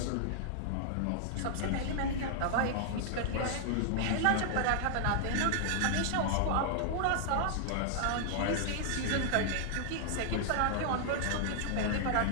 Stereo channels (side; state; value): both; different; correlation 0.00